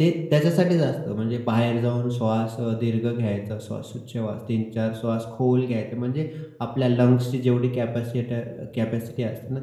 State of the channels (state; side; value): identical; both; correlation 1.00